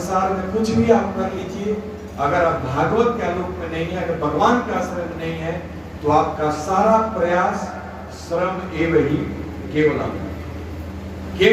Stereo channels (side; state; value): both; identical; correlation 1.00